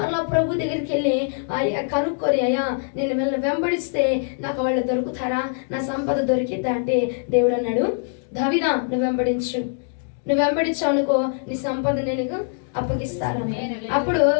ప్రభు దగ్గరికి వెళ్ళి కనుక్కొని, అయ్యా నేను వీళ్ళని వెంబడిస్తే నాకు వాళ్ళు దొరుకుతారా? నా సంపద దొరికిద్దా అంటే దేవుడు అన్నాడు, దావీదా నువ్వు వెంబడించావు అనుకో, నీ సంపద నేను అప్పగిస్తాను. అప్పుడు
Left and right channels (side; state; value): right; silent; digital silence